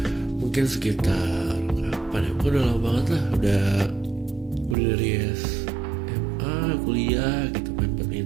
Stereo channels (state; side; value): drops out; left; at 4.8 s